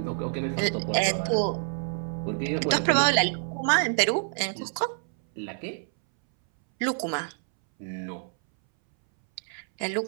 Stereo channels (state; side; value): silent; left; 60 dB below the other